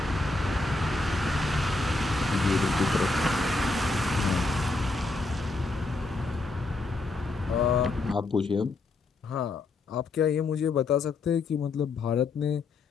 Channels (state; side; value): quieter; right; 3.5 dB